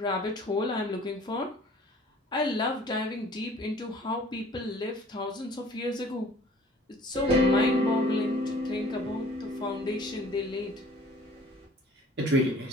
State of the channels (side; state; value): both; normal; correlation 0.51